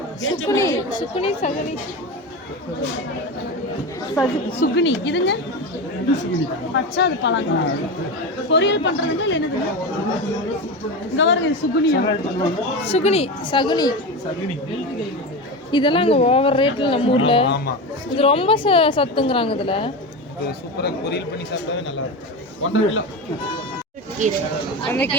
சுக்குனி சகுனி. சுகுனி இதுங்க பச்சை அது பழங்க பொரியல் பண்றதுங்க இல்லை என்னதுங்க இங்க பாருங்க இது சுகுனியா சுகுனி சகுனி இதெல்லாம் அங்கே ஓவர் ரேட்டில் நம்ம ஊரில் ஆமா இது ரொம்ப சத்துங்கிறாங்க இதில். இது சூப்பரா பொரியல் பண்ணி சாப்பிட்டாவே நல்லா இருக்கும் 1.5 கிலோ அந்த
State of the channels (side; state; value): both; normal; correlation 0.21